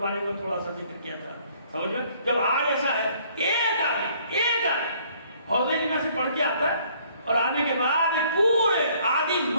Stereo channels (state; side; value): inverted; both; correlation -0.61